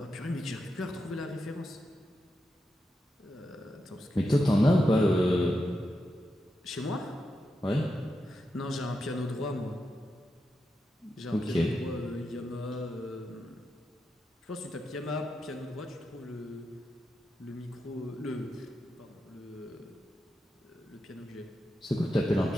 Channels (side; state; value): both; normal; correlation 0.87